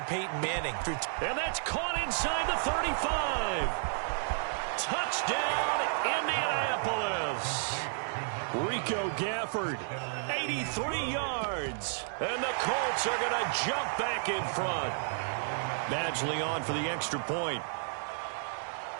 Peyton Manning. And that's caught inside the 35. Touchdown, Indianapolis. Rico Gafford. 83 yards. And the Colts are going to jump back in front. Badgley on for the extra point.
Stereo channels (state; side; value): silent; left; digital silence